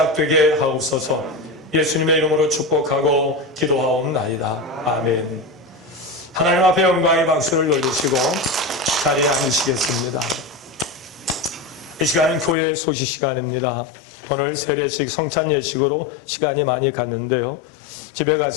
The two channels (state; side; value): drops out; right; at 12.6 s